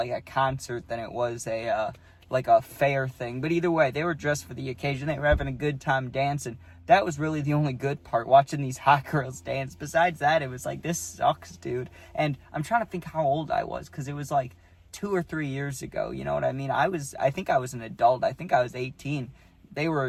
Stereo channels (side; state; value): both; identical; correlation 1.00